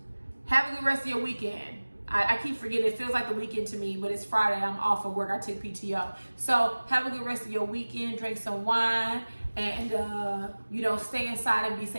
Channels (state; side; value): inverted; both; correlation -1.00